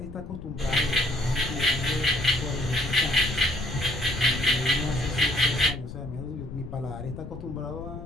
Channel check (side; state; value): left; noise; rumble, 11 dB below the sound